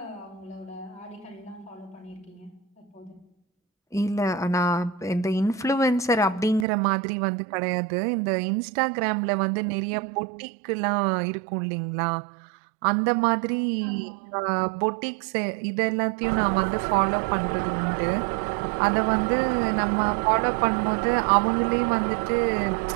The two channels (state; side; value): drops out; left; at 6.7 s